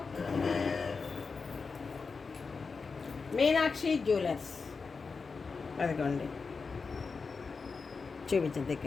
మీనాక్షి జ్యువెలర్స్. అదిగోండి, చూపించండి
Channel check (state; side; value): quieter; right; 4.8 dB